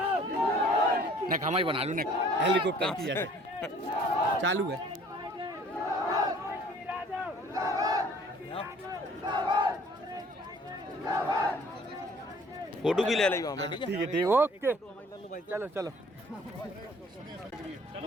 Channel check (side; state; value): both; normal; correlation 0.54